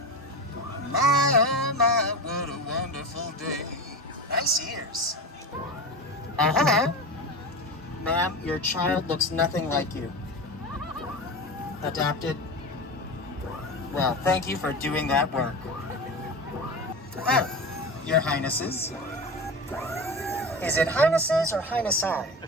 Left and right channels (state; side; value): normal; both; correlation 0.26